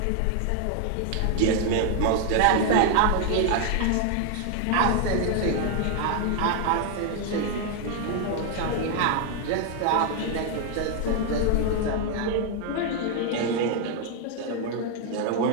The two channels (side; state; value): both; different; correlation 0.00